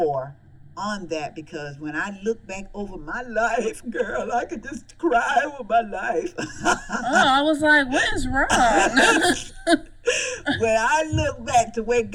on that, because when I look back over my life, girl, I could just cry over my life. I was like, what is wrong? When I look back to where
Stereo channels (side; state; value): both; identical; correlation 1.00